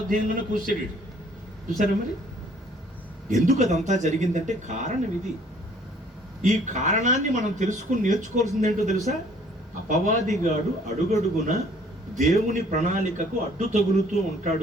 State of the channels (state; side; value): normal; both; correlation 0.58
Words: అధ్యాయంలోనే కూర్చాడు. చూసారా మరి? ఎందుకు అదంతా జరిగిందంటే కారణం ఇది. ఈ కారణాన్ని మనం తెలుసుకుని నేర్చుకోవాల్సింది ఏంటో తెలుసా? అపవాదిగాడు అడుగడుగున దేవుని ప్రణాళికకు అడ్డు తగులుతూ